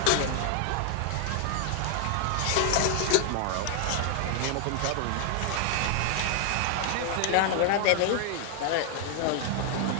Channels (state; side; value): different; both; correlation 0.00